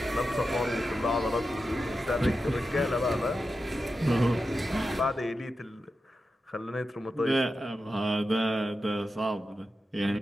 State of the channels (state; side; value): normal; both; correlation 0.90